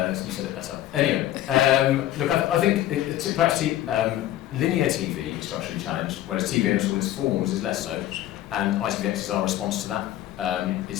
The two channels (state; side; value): quieter; right; 13.5 dB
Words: You said it better. Anyway, look, I think perhaps linear TV is structurally challenged, whereas TV in all its forms is less so, and ITVX is our response to that.